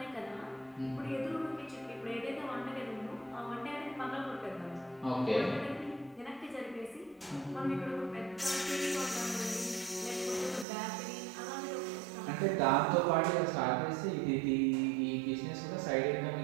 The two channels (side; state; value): left; drops out; at 10.7 s